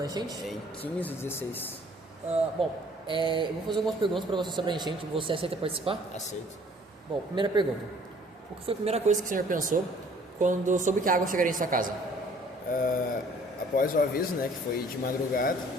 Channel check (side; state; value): both; normal; correlation 0.56